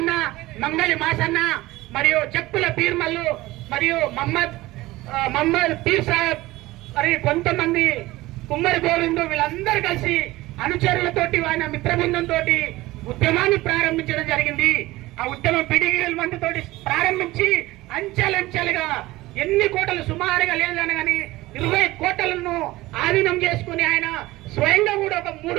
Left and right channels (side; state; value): left; quieter; 18.6 dB